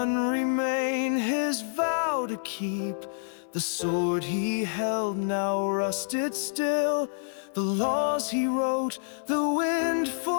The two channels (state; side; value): silent; right; 60 dB below the other